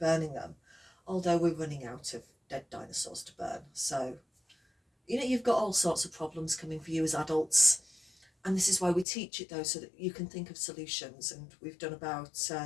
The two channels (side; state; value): right; drops out; at 9.1 s